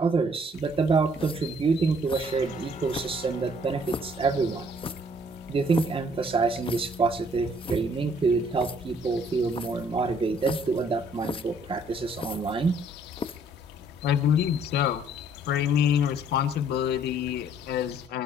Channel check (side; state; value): both; normal; correlation 0.61